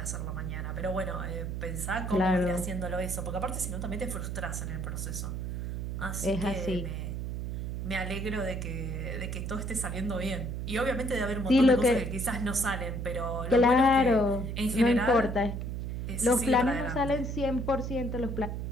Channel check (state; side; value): noise; right; hum, 4 dB below the sound